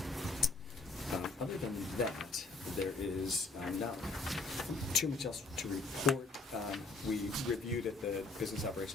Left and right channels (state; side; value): quieter; right; 3.6 dB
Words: Other than that, there is not too much else to report. We reviewed at the Business